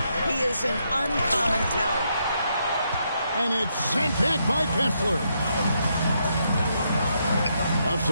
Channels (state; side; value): inverted; both; correlation -0.78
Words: He is an uncommon talent. And it's sent back by Kessler. Left